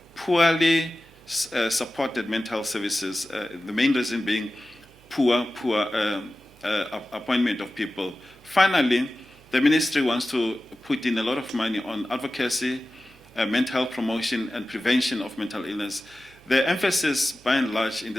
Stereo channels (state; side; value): noise; right; hum, 28 dB below the sound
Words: Poorly supported mental health services, the main reason being poor appointment of people. Finally, the ministry wants to put in a lot of money on advocacy, mental health promotion, and prevention of mental illness. The emphasis, by and large, in